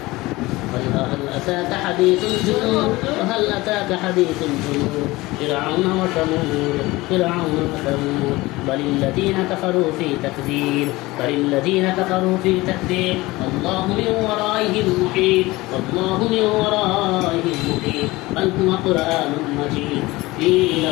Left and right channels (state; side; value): quieter; right; 20.4 dB